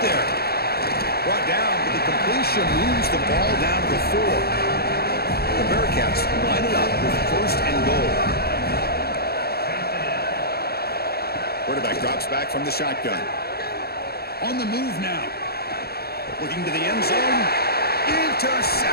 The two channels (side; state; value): right; late; 0.46 ms